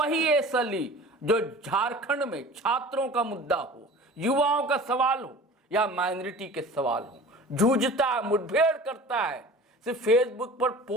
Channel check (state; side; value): normal; both; correlation 0.41